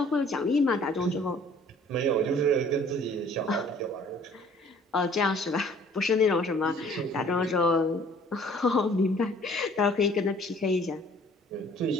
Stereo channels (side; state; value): both; normal; correlation 0.54